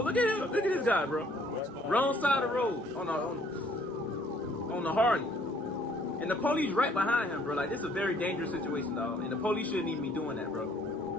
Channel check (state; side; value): normal; both; correlation 0.61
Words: at him. Look at this guy, bro. Wrong side of the road on the Harley. And the police right behind him, bro. Like, this is a very dangerous situation, dog. And the police shouldn't even be doing that,